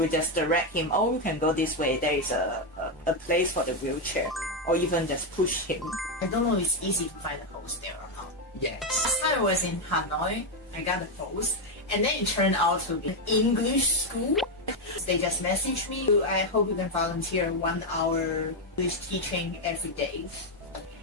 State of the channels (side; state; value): both; normal; correlation 0.05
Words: just direct him, oh, you can go this way, there is a place for the wheelchair. Or even just push him. I don't know if it's easy to find a host there or not. Yes. Last time I was in Hanoi, I got a post, and then it turned out to be an English school. They just messaged me, I hope you can volunteer 1 hour English teaching every day.